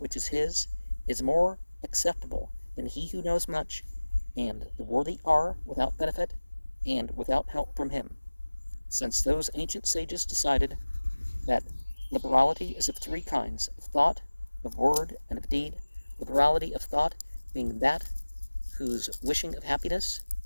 is his is more acceptable than he who knows much, and the worthy are without benefit and without help from him, since those ancient sages decided that liberality is of three kinds: of thought, of word, and of deed. Liberality of thought being that whose wishing of happiness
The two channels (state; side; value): inverted; both; correlation -1.00